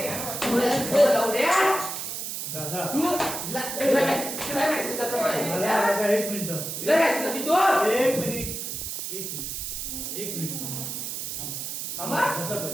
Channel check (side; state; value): right; noise; hiss, 5 dB below the sound